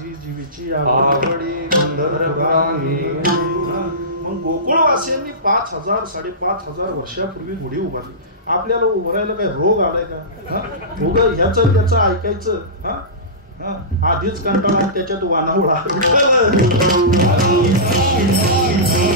जीवीची आवडी मग गोकुळवासियांनी 5,000 5,500 वर्षापूर्वी गुढी उभारली. आपल्याला उभारायला काय रोग आलाय का? ह्याचं त्याचं ऐकायचं. आधीच कंटाळा त्याच्यात वानावळा.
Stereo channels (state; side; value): normal; both; correlation -0.20